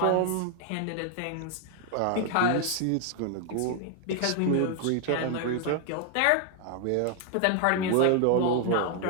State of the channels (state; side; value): different; both; correlation 0.00